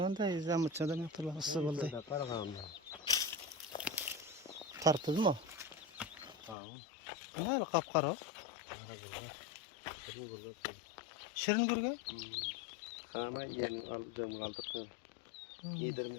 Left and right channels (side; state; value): right; drops out; at 6.6 s